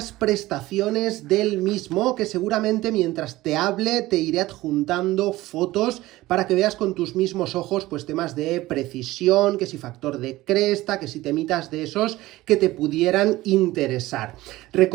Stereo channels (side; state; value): left; quieter; 17.7 dB